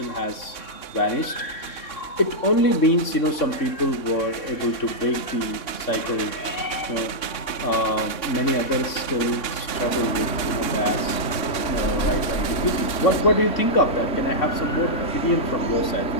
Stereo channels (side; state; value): right; late; 3.6 ms